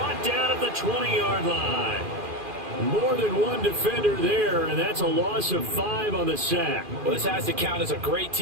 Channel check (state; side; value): late; left; 2.4 ms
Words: down at the 20-yard line. More than one defender there, and that's a loss of 5 on the sack. Well, this has to count as a great